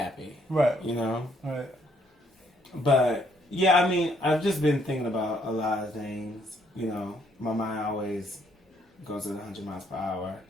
Right. Right. But, yeah, I mean, I've just been thinking about a lot of things. My mind always goes at 100 miles per hour.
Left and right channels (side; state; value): both; normal; correlation 0.69